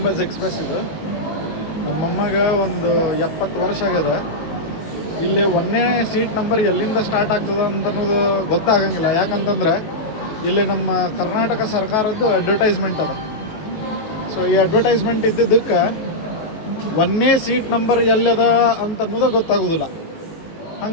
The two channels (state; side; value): late; right; 19 ms